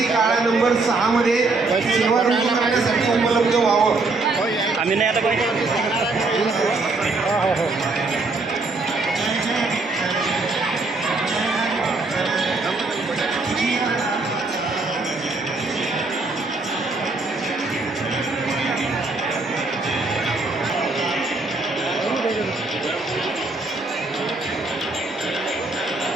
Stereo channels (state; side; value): quieter; left; 3.5 dB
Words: काळा नंबर 6 मध्ये सेवा करण्यासाठी उपलब्ध व्हावं. आम्ही नाही आता